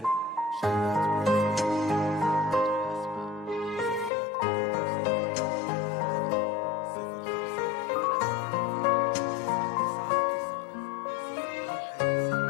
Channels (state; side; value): drops out; right; at 4.1 s